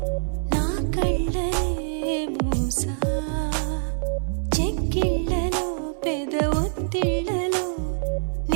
నా కళ్ళనే మూసా చెక్కిళ్ళలో పెద ఒత్తిళ్ళలో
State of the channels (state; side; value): silent; left; digital silence